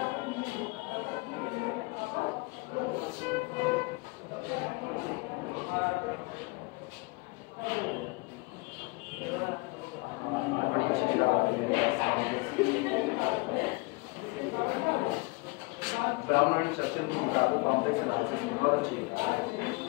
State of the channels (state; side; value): quieter; right; 26.4 dB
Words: ब्राउन एंड सर्किल की किताबों कॉम्प्लेक्स एनालिसिस बहुत अच्छी है,